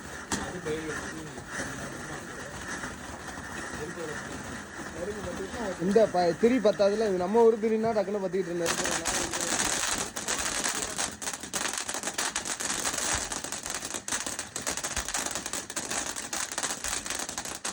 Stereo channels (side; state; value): both; identical; correlation 1.00